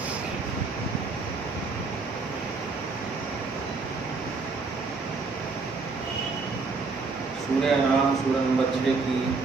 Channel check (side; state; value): left; quieter; 4.2 dB